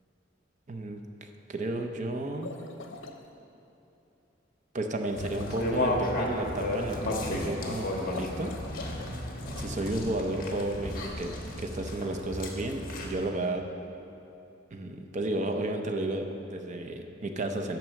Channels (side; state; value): both; normal; correlation 0.38